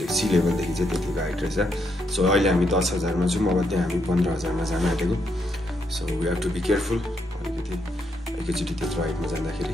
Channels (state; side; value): normal; both; correlation 0.78